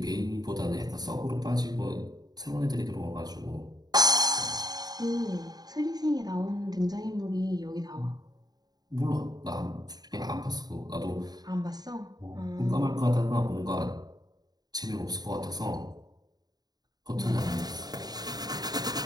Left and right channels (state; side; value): late; left; 0.19 ms